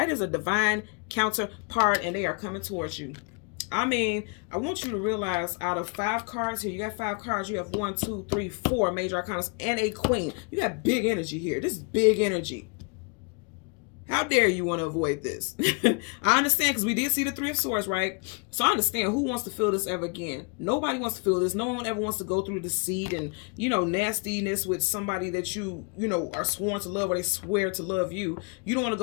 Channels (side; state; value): right; quieter; 33.7 dB